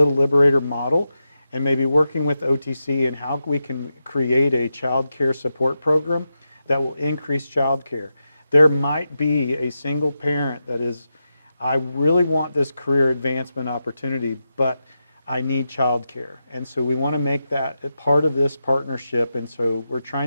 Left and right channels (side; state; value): both; inverted; correlation -0.89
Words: Liberator model and maybe working with OTC and how we can create a child care support program that will increase child care. There might be a single parent that is, I really want this career advancement opportunity, but I need child care. And so we want to make that a part of this partnership. And so we're